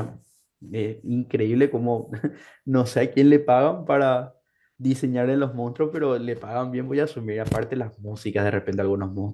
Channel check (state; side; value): identical; both; correlation 1.00